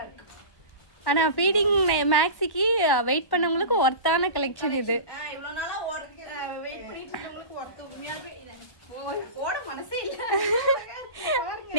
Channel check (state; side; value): late; right; 1.1 ms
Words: இருக்கு. ஆனா ஃபீடிங் மேக்ஸிக்கு வெயிட் பண்ணவங்களுக்கு ஒர்த்தான கலெக்ஷன் இது. இவ்வளவு நாளா வெயிட் பண்ணிட்டு இருக்கவங்களுக்கு ஒர்த் உண்மையாவே ஓட மனசே இல்ல.